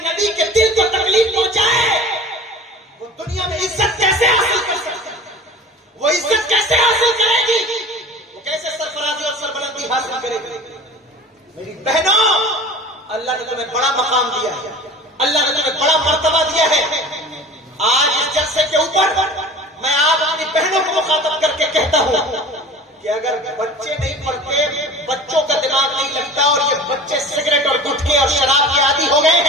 کے دل کو تکلیف پہنچائے وہ دنیا میں عزت کیسے حاصل کر سکتے, وہ عزت کیسے حاصل کرے گی, وہ کیسے سرفرازی اور سربلندی حاصل کرے گی. میری بہنوں, اللہ نے تمہیں بڑا مقام دیا ہے, اللہ نے تمہیں بڑا مرتبہ دیا ہے. آج اس جلسے کے اوپر میں آپ اپنی بہنوں کو مخاطب کر کے کہتا ہوں کہ اگر بچے نہیں پڑھتے, بچوں کا دماغ نہیں لگتا اور یہ بچے سگریٹ اور گٹکے اور شراب کے عادی ہو گئے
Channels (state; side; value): normal; both; correlation 0.39